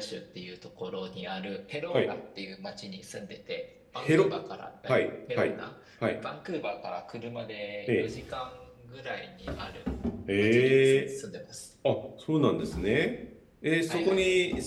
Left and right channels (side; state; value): both; identical; correlation 1.00